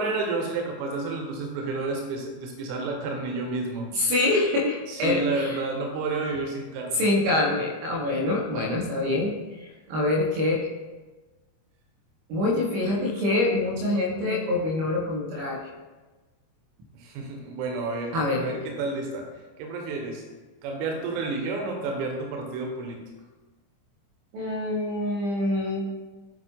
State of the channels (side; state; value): left; late; 25 ms